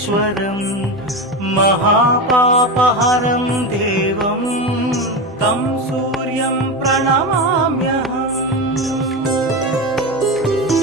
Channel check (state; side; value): normal; both; correlation 0.20